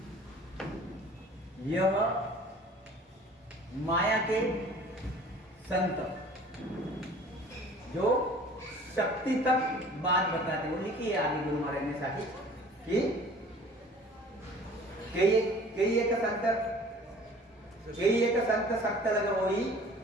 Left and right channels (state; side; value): normal; both; correlation 0.48